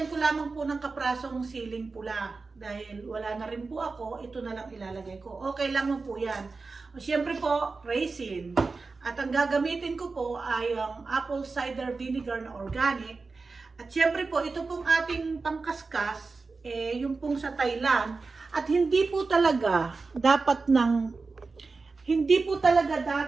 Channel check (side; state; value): left; quieter; 4.1 dB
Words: ko lamang po ng kaprasong siling pula. Dahil wala na rin po ako, ito na lang ilalagay ko. Okay lang po yan. Siyempre po, raisin. At ang gagamitin ko po ay ang apple cider vinegar na organic. At siyempre po, ito pong ating pangkaskas, yung pong sa Thailand. At hindi po talaga dapat hindi po